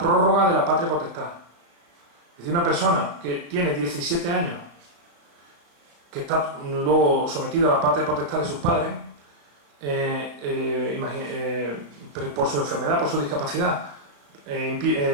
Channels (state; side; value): late; left; 34 ms